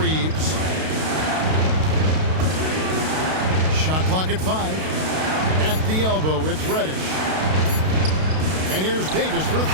Shot clock at 5. At the elbow, it's Reddish. And here's Davis for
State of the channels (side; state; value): left; late; 32 ms